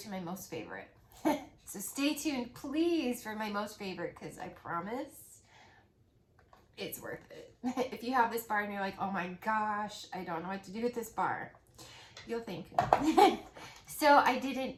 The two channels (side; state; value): both; identical; correlation 1.00